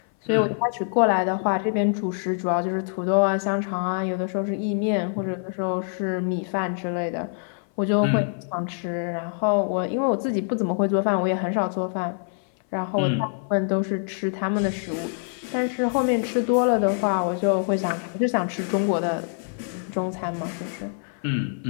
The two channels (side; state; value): right; silent; 59 dB below the other